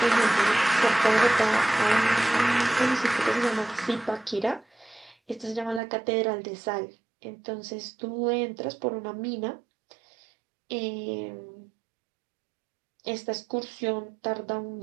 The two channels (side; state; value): left; drops out; at 5.8 s